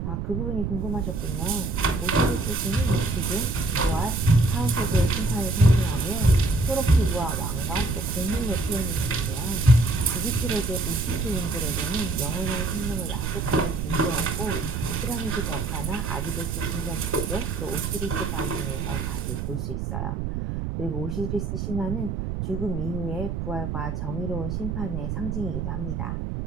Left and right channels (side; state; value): right; noise; rumble, 3 dB below the sound